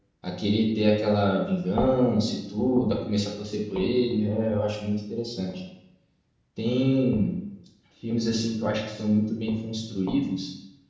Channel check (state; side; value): identical; both; correlation 1.00